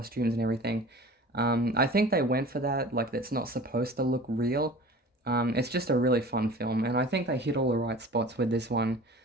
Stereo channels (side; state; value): both; normal; correlation 0.41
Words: and everything. I think they went for that, like it's not supposed to look real. It's just a really fun film, and I think they hit all the right spots with this one